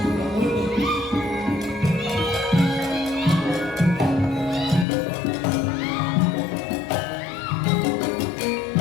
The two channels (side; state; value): right; drops out; at 4.9 s